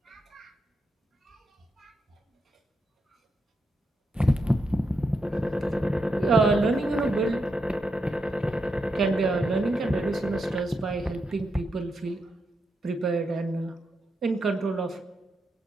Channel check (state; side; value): normal; both; correlation 0.84